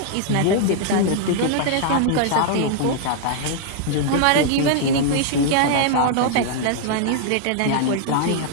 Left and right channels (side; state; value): both; different; correlation -0.01